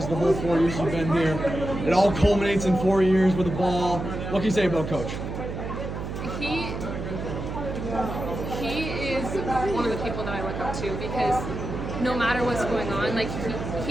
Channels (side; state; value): right; noise; hum, 6 dB below the sound